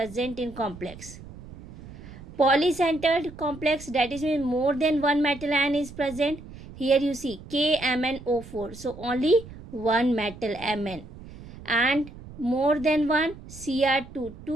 in complex. Polycentered complex, that is means more than one metal ion is present. Here you see KMnO4, so only one metal Mn, and more than one Cr2,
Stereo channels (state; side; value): noise; right; rumble, 16 dB below the sound